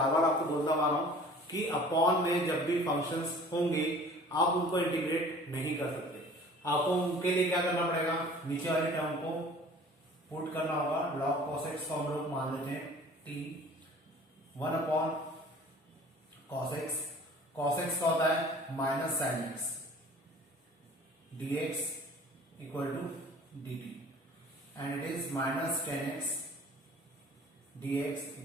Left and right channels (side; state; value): both; normal; correlation 0.48